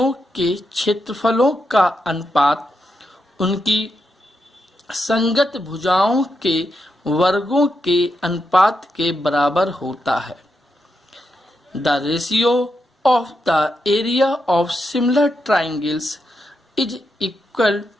के क्षेत्रफलों का अनुपात उनकी संगत भुजाओं के वर्गों के अनुपात के बराबर होता है। The ratio of the area of similar triangles is equal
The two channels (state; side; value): normal; both; correlation 0.84